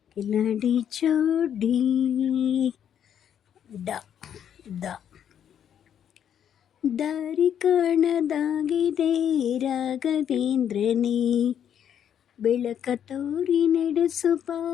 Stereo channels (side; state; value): right; quieter; 9.2 dB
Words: ಕಿಲಾಡಿ ಜೋಡಿ. ದಾರಿ ಕಾಣದಾಗಿದೆ ರಾಘವೇಂದ್ರನೇ, ಬೆಳಕ ತೋರಿ ನಡೆಸುವ